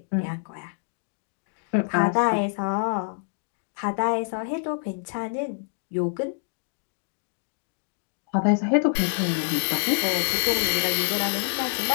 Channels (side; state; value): right; silent; digital silence